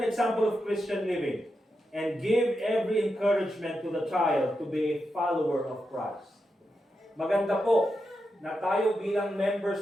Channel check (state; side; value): normal; both; correlation 0.87